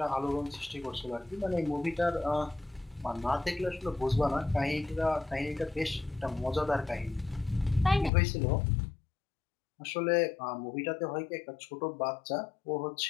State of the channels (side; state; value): right; drops out; at 8.1 s